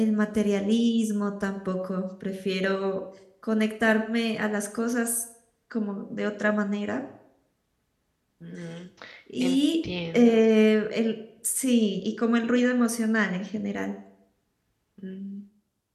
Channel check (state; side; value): identical; both; correlation 1.00